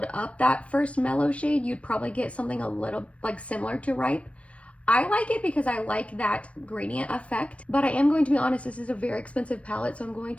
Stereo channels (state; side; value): late; right; 0.063 ms